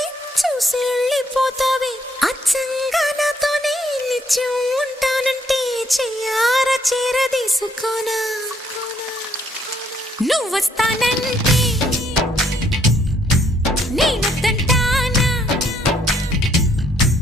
చూసి వెళ్ళిపోతావే అచ్చంగా నాతోనే నిత్యం ఉంటానంటే చెయ్యారా చేరదీసుకోనా నువ్వు వస్తానంటే నేనొద్దంటానా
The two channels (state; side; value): normal; both; correlation 0.68